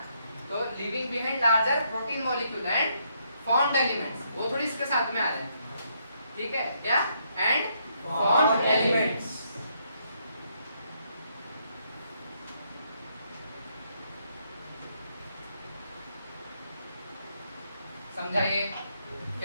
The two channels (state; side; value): inverted; both; correlation -0.74